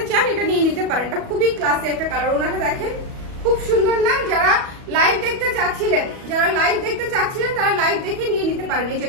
চান, এটা নিয়ে নিতে পারেন, এটা খুবই ক্লাসি একটা কালার। ওড়নাটা দেখেন, খুব সুন্দর না? যারা লাইভ দেখতে চাচ্ছিলেন, তারা লাইভ দেখে নিয়ে নিতে পারেন এই যে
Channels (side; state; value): left; late; 37 ms